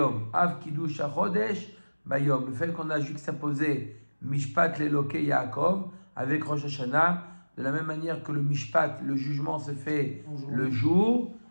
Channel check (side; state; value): both; inverted; correlation -1.00